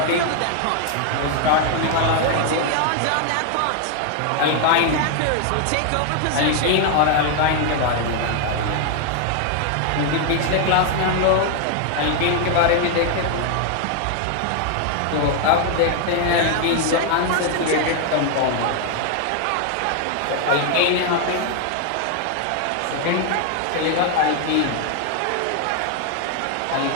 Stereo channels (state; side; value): different; both; correlation 0.00